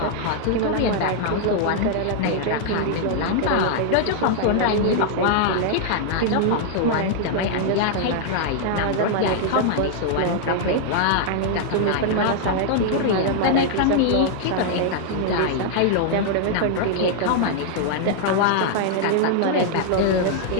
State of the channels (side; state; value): both; different; correlation -0.01